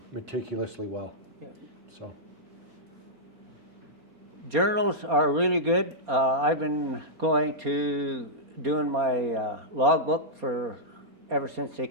meticulously well. Yeah. So. Journals are really good. I've been going to doing my logbook for ever since they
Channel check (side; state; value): left; late; 4.3 ms